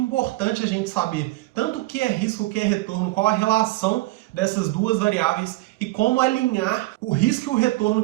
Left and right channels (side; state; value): left; quieter; 19.7 dB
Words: a gente saber tanto o que é risco, o que é retorno, qual a relação dessas duas variáveis e como alinhar o risco e o retorno